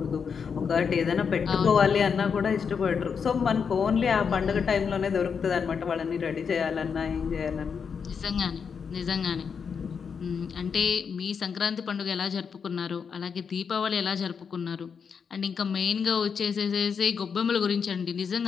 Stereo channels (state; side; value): quieter; right; 6.3 dB